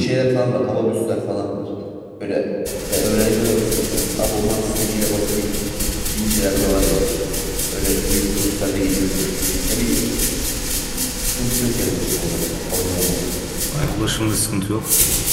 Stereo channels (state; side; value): identical; both; correlation 1.00